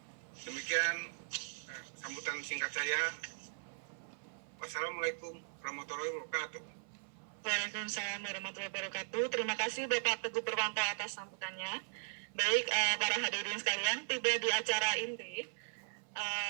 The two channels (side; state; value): left; silent; 52 dB below the other